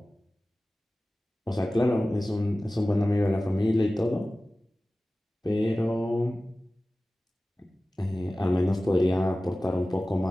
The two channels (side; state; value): both; normal; correlation 0.96